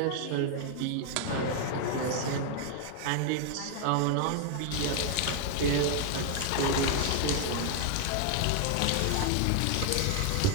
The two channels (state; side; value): different; both; correlation 0.00